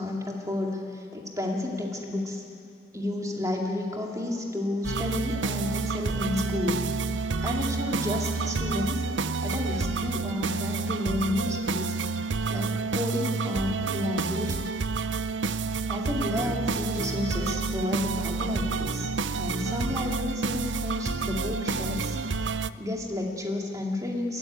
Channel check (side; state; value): both; normal; correlation 0.56